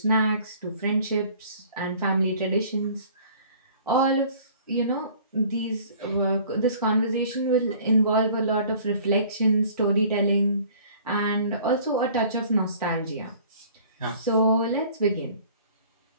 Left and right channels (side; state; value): both; inverted; correlation -0.51